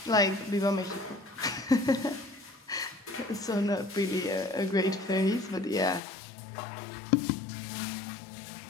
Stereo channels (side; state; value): right; drops out; at 6.0 s